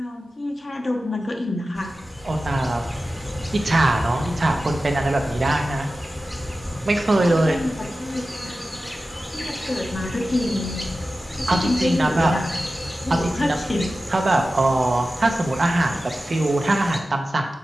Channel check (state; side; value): normal; both; correlation 0.94